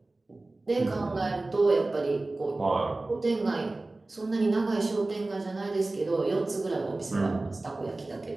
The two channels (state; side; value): quieter; left; 3.0 dB